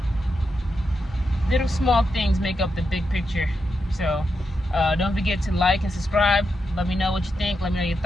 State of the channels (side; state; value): both; normal; correlation 0.85